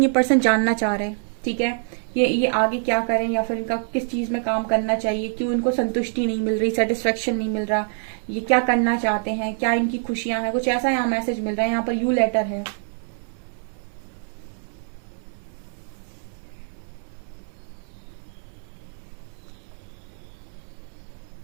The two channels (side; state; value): left; silent; 59 dB below the other